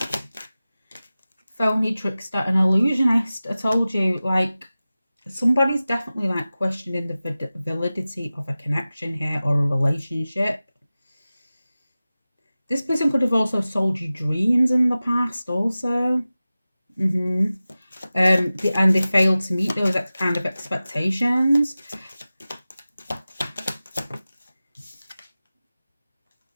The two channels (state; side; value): inverted; both; correlation -0.96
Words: Phony, trickster, and illusionist. I told you, like, somebody's definitely like questioning the validity of a connection here, or a relationship. This person could have also sold you dreams in the past also. And they failed to meet those kind of expectations.